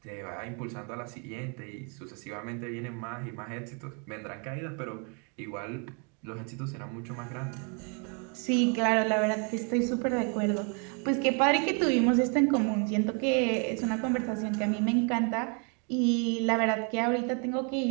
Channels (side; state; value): left; quieter; 35.1 dB